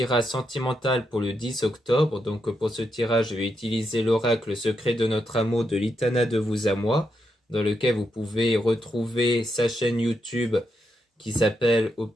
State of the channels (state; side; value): normal; both; correlation 0.83